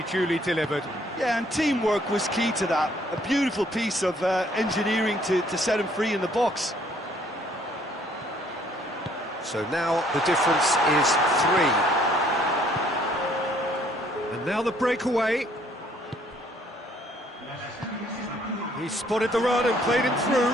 duly delivered. Yeah, and teamwork was key to that. A beautiful piece of engineering to set him free in the box. So now the difference is 3. And now the breakaway. He spotted the run and played him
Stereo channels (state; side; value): normal; both; correlation 0.63